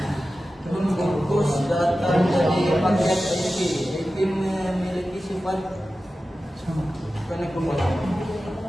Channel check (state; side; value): normal; both; correlation 0.94